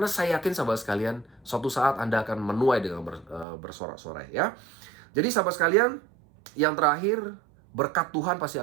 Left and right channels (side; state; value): left; drops out; at 3.5 s